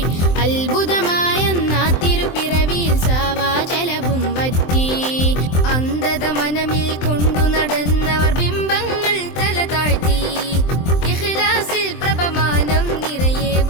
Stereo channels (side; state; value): right; late; 23 ms